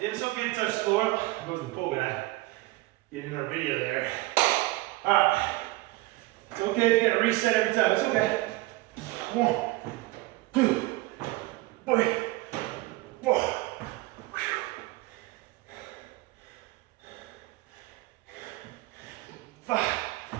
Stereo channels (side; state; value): left; quieter; 20.1 dB